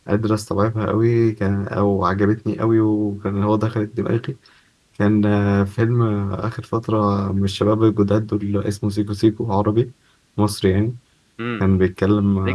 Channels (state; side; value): identical; both; correlation 1.00